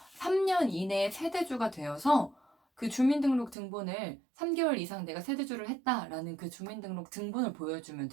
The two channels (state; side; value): drops out; left; at 3.6 s